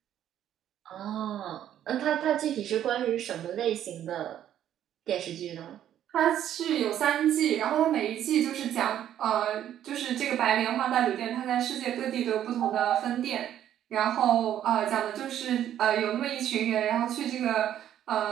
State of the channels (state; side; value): quieter; left; 11.0 dB